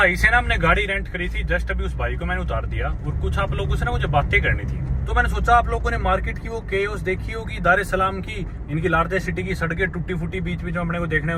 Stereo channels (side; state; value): both; identical; correlation 1.00